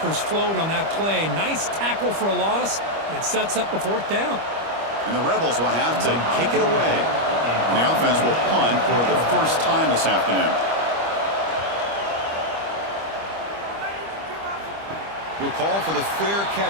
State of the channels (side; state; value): left; late; 25 ms